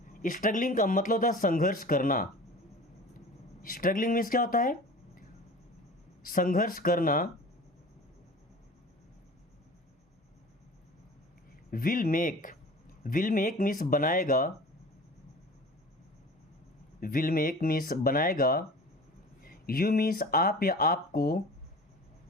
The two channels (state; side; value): normal; both; correlation 0.39